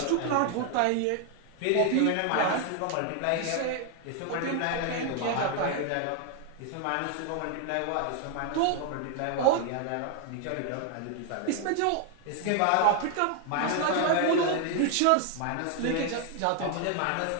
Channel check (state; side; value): different; both; correlation 0.00